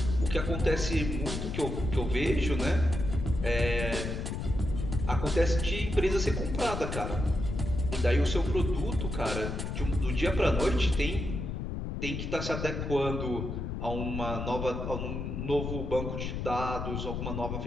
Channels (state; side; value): noise; left; rumble, 4 dB below the sound